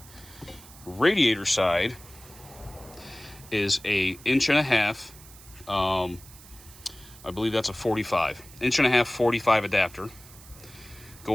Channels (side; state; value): right; noise; hiss, 20 dB below the sound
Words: radiator side, is a 1.5 inch, I believe that's a 45. 1.5 inch 45 adapter